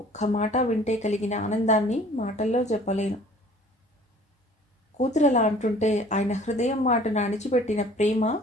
మాట వింటే కలిగిన ఆనందాన్ని మాటల్లో చెప్పలేను. కూతురలా అంటుంటే ఆయన హృదయం మాటను అణిచిపెట్టిన ప్రేమ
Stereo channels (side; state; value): both; normal; correlation 0.51